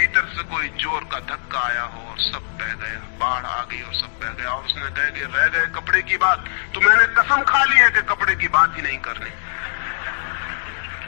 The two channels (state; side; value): silent; right; digital silence